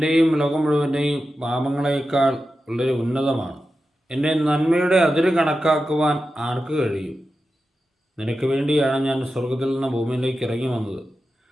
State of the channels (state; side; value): normal; both; correlation 0.91